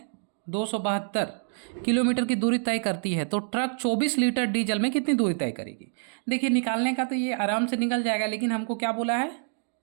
272 किलोमीटर की दूरी तय करती है तो ट्रक 24 लीटर डीजल में कितनी दूरी तय करेगी। देखिए निकालने का तो ये आराम से निकल जाएगा, लेकिन हमको क्या बोला है,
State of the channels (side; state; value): left; silent; digital silence